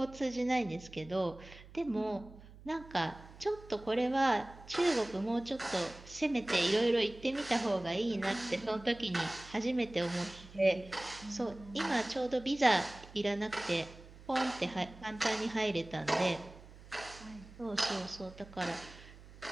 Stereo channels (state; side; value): noise; right; hum, 19 dB below the sound